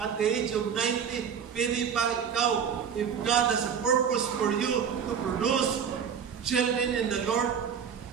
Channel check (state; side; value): quieter; left; 7.4 dB